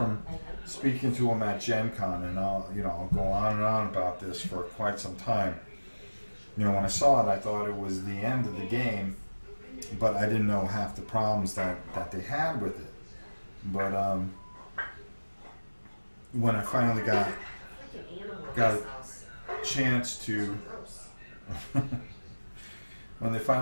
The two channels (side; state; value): both; inverted; correlation -1.00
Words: speaking to him at Gen Con, and I'll go on and on about this for quite some time. When I saw it, I thought it was the end of the game, but I didn't know half the problems that they had with it. But when I finally got a chance to when they